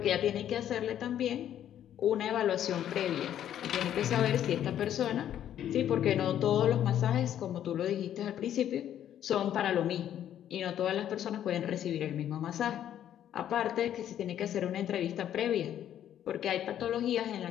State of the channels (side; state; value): right; quieter; 10.7 dB